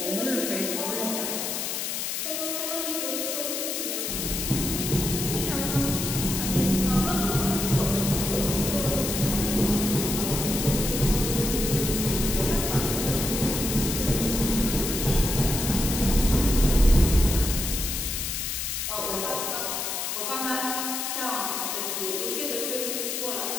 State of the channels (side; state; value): left; noise; hiss, 2 dB below the sound